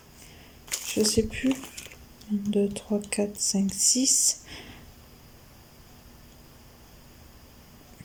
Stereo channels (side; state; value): both; identical; correlation 1.00